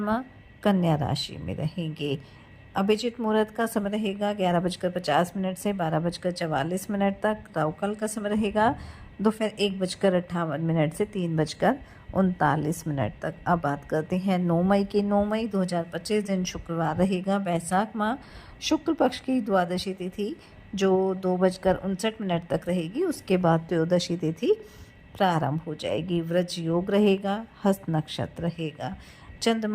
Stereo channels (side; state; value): both; identical; correlation 1.00